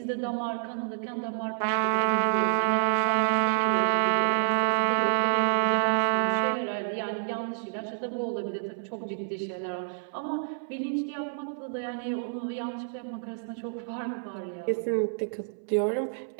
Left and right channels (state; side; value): silent; left; 59 dB below the other